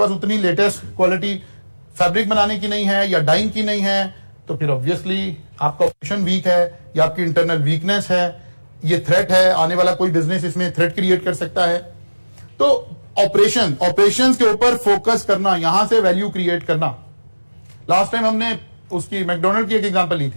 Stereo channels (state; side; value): inverted; both; correlation -1.00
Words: उतनी लेटेस्ट क्वालिटी फैब्रिक बनाने की नहीं है या डाइंग की नहीं है, तो फिर ऑब्वियसली आपका ऑपरेशन वीक है या आपकी इंटरनल वीकनेस है, ये थ्रेट है, आने वाला कोई बिजनेस इसमें थ्रेट क्रिएट कर सकता है। तो ऑपरेशंस के ऊपर फोकस करना, यहां से वैल्यू क्रिएट करना। लास्ट टाइम हमने उसकी मैकडोनल्ड की एक एग्जांपल ली